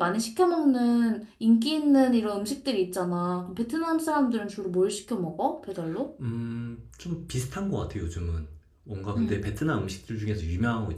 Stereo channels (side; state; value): both; identical; correlation 1.00